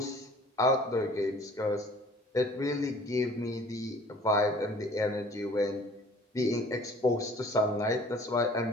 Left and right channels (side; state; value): both; normal; correlation 0.51